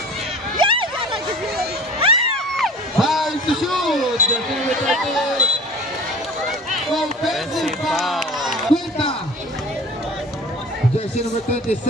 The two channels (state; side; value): normal; both; correlation 0.41